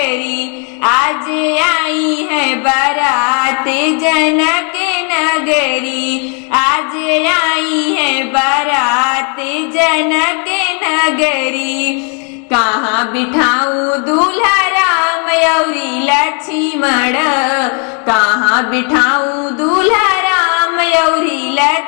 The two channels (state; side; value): quieter; right; 39.3 dB